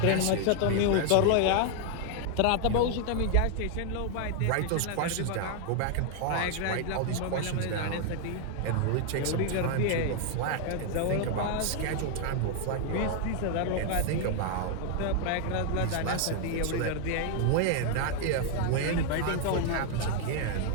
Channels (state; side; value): different; both; correlation 0.00